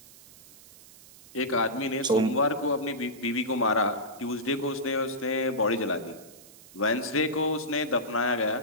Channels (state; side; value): noise; right; hiss, 21 dB below the sound